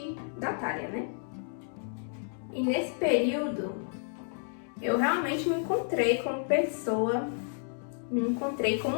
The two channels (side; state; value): right; silent; 57 dB below the other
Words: da Thalia, né? E nesse período, eu realmente me encontrei como pessoa, me encontrei